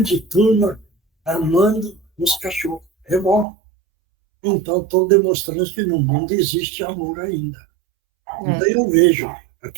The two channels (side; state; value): left; drops out; at 3.5 s